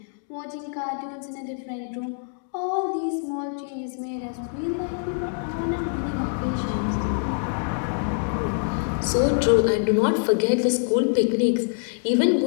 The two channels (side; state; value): right; silent; 62 dB below the other